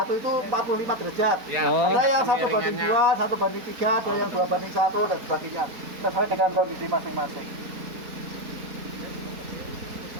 itu 45 derajat. Oh. Ada yang 1:2, 1:3, ada yang 2:1 dan sebagainya. Sesuai dengan kondisi masing-masing.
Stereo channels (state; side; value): late; left; 4.4 ms